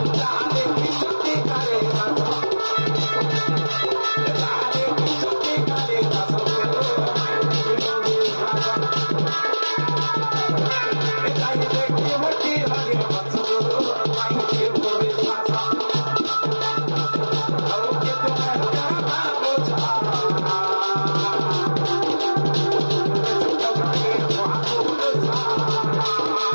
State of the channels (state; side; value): inverted; both; correlation -1.00